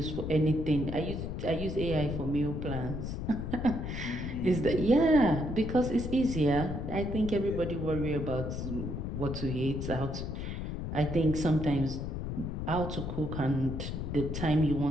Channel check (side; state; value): left; noise; rumble, 4 dB below the sound